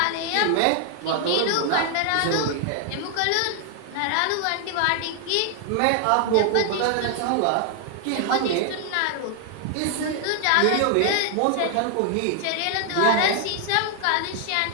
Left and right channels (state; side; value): different; both; correlation 0.00